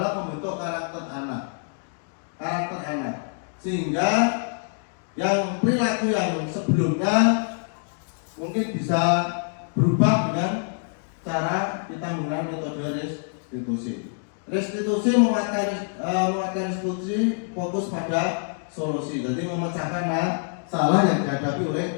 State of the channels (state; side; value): silent; right; 61 dB below the other